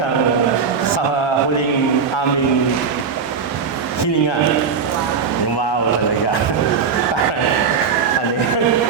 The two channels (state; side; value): quieter; left; 6.0 dB